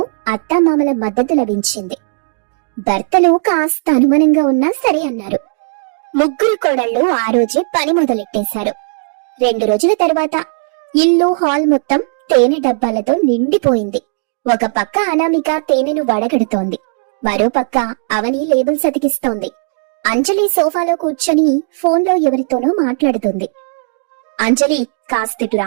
అత్తామామల మద్దతు లభించింది. భర్తలు కాస్త అనుమానంగా ఉన్నా సరే అన్నారు. ముగ్గురు కోడళ్ళు ఆ రోజే పని మొదలెట్టేశారు. 2 రోజుల తర్వాత ఇల్లు, హాల్ మొత్తం తేనె డబ్బాలతో నిండిపోయింది. ఒక పక్క అనామిక తేనెను వడగడుతోంది. మరో పక్క అవని లేబుల్స్ అతికిస్తోంది. అంజలి సోఫాలో కూర్చొని ఫోన్లో ఎవరితోనో మాట్లాడుతుంది. అంజలి, కాస్తిటు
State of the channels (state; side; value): silent; left; digital silence